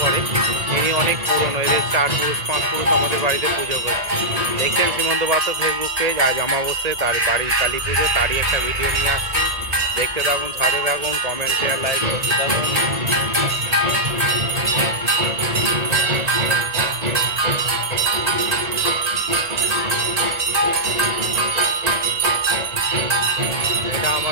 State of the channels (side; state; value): left; late; 1.9 ms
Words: করে। ইনি অনেক পুরনো, এদের 4 পুরুষ 5 পুরুষ আমাদের বাড়িতে পুজো করে। দেখছেন সীমন্ত পাত্র ফেসবুক পেজ। আজ অমাবস্যায় তার বাড়ির কালী পুজো, তারই একটা ভিডিও নিয়ে আসছি। দেখতে থাকুন, সাথে থাকুন, কমেন্ট শেয়ার লাইক করতে থাকুন। এটা